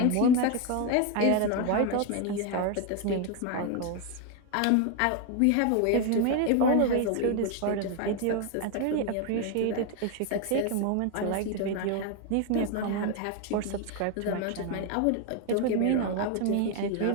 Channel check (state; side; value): different; both; correlation 0.01